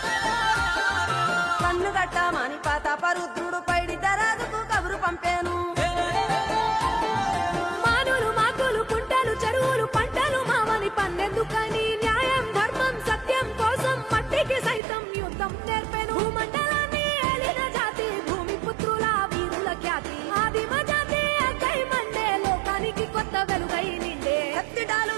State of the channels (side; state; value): left; drops out; at 14.8 s